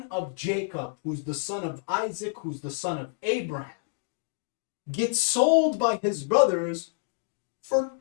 of Jacob, who's the son of Isaac, who's the son of Abraham, gets sold by his brothers for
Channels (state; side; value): silent; right; digital silence